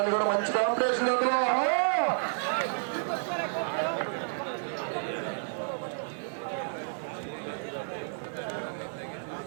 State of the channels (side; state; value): left; silent; digital silence